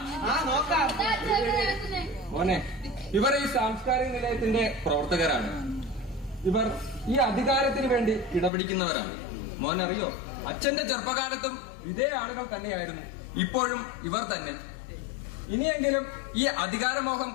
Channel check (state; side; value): drops out; right; at 8.5 s